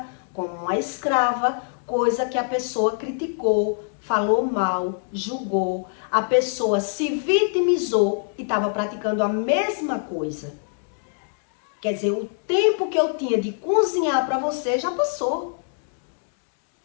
como uma escrava, coisa que a pessoa criticou, falou mal, julgou, a pessoa se vitimizou e estava praticando a mesma coisa. Quer dizer, o tempo que eu tinha de cozinhar para você já passou.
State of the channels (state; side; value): silent; right; digital silence